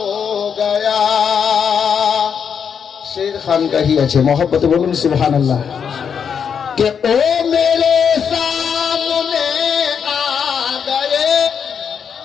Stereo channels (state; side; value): quieter; right; 7.1 dB